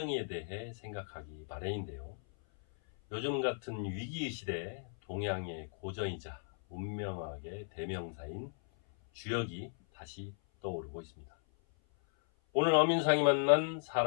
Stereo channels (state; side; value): silent; right; 54 dB below the other